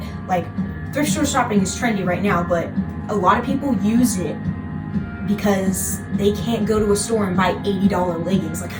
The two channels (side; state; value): both; identical; correlation 1.00